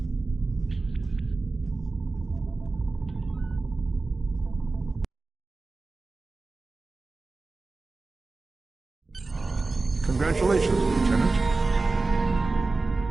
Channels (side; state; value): left; quieter; 3.6 dB